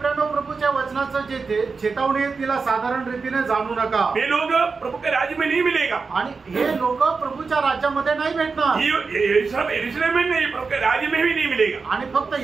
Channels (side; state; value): left; quieter; 4.7 dB